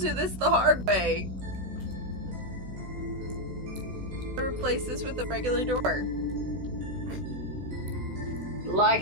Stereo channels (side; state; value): left; late; 16 ms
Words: this the hard way. Replace this with a regular door. Like